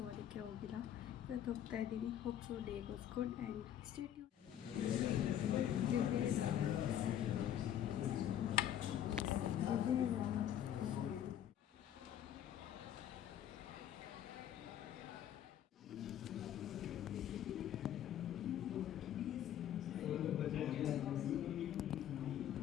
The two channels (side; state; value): right; quieter; 10.6 dB